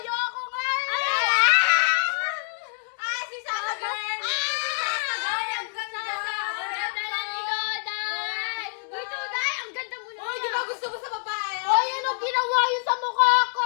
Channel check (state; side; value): silent; right; 61 dB below the other